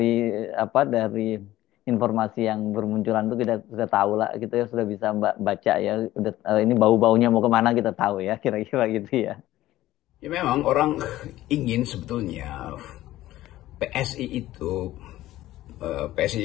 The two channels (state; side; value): quieter; right; 15.3 dB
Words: informasi yang bermunculan itu kita sudah tahu lah, kita sudah bisa baca ya. Udah, ini bau-baunya mau kemana kita tahu ya, kira-kira gitu ya. Ya memang orang ingin sebetulnya PSI itu,